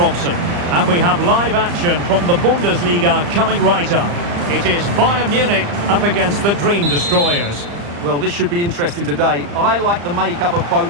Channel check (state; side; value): late; left; 35 ms